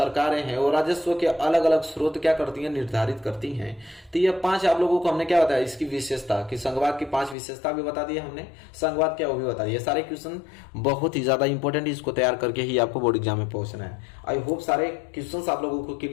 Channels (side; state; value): right; drops out; at 7.4 s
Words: हैं वो राजस्व के अलग अलग स्रोत क्या करती हैं, निर्धारित करती हैं। तो ये 5 आप लोगों को हमने क्या बताया, इसकी विशेषता कि संघवाद की 5 विशेषता भी बता दी हमने, संघवाद क्या वो भी बता दिया। सारे क्वेश्चन बहुत ही ज्यादा इंपॉर्टेंट, इसको तैयार करके ही आपको बोर्ड एग्जाम में पहुंचना है। आई होप सारे क्वेश्चन आप लोगों को